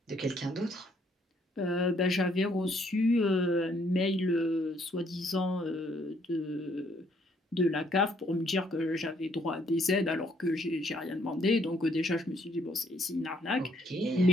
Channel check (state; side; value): normal; both; correlation 0.67